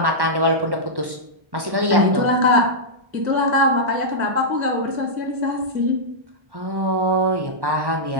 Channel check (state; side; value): late; left; 1.1 ms